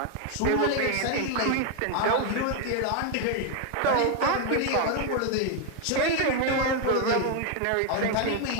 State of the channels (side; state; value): both; different; correlation 0.00